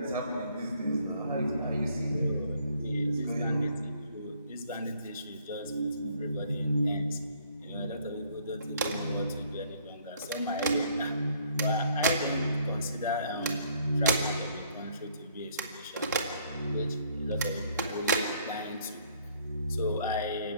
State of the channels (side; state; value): both; inverted; correlation -0.63